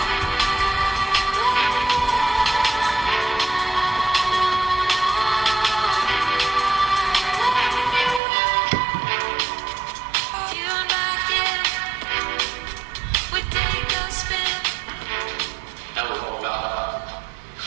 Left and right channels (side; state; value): left; drops out; at 8.2 s